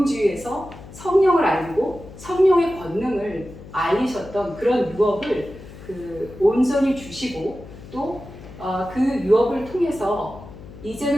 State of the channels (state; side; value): noise; left; hum, 16 dB below the sound